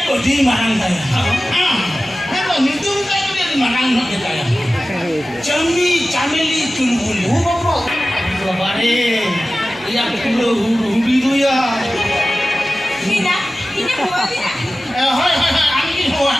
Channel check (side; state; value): both; normal; correlation 0.95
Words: को दी मारंग था हां मैं तो नितुम का कुड़ी मारंग न देता है चमी चामेली चुलबुली वो बाबू बारे या कुलो हुडी दो या Neena ini huwa dia hai angin huwa